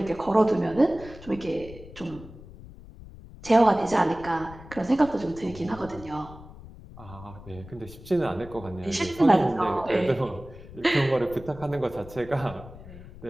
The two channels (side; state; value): left; noise; rumble, 17 dB below the sound